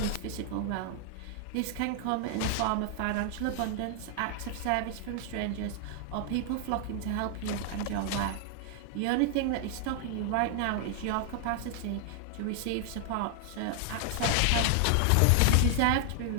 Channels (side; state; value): both; different; correlation 0.00